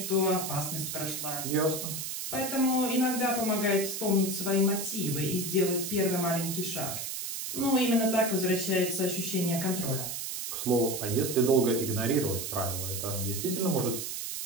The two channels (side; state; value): right; noise; hiss, 5 dB below the sound